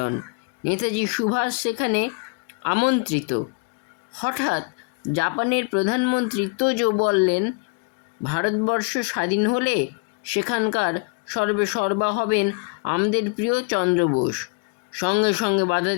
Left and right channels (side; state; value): right; quieter; 30.9 dB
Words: নেতাজি সুভাষ সেখানে আমন্ত্রিত। হঠাৎ জাপানের প্রধানমন্ত্রী তোজো বললেন, ভারতবর্ষ স্বাধীন হলে সেখানকার সর্বেসর্বা হবেন আমাদের প্রিয় চন্দ্র বোস। সঙ্গে সঙ্গে বাধা